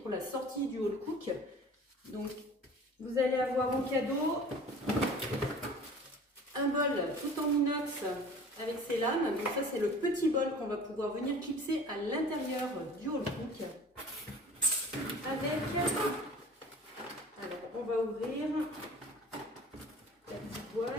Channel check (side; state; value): both; normal; correlation 0.44